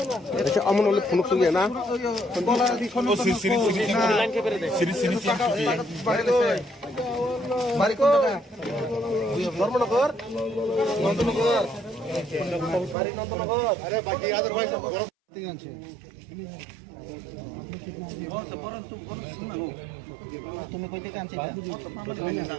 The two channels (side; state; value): left; drops out; at 13.0 s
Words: अच्छा अमन वाले फोन सुन गया ना धर्मनगर नंदनगर बारी नंदनगर अरे बाकी अदरवाइज तुम्हें कोई काम चाहिए?